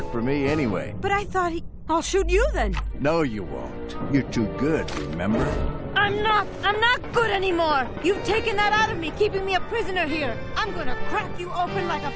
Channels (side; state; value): both; identical; correlation 1.00